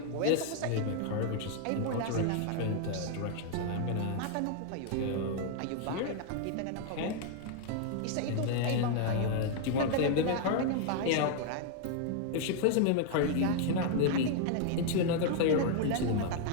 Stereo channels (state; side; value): different; both; correlation 0.00